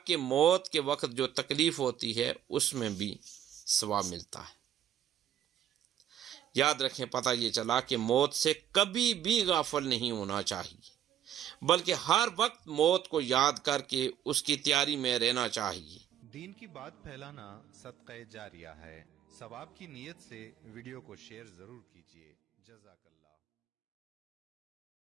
کہ موت کے وقت جو تکلیف ہوتی ہے اس میں بھی ثواب ملتا ہے۔ یاد رکھیں، پتہ یہ چلا کہ موت سے کبھی بھی غافل نہیں ہونا چاہیے، بلکہ ہر وقت موت کو یاد کر کے اس کی تیاری میں رہنا چاہیے۔ دین کی بات پھیلانا صدقہ جاریہ ہے، ثواب کی نیت سے ویڈیو کو شیئر ضرور کیجیے۔ جزاک اللہ۔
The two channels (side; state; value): left; quieter; 10.4 dB